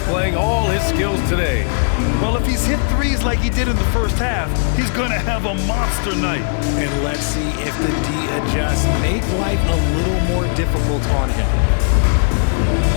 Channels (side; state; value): right; silent; digital silence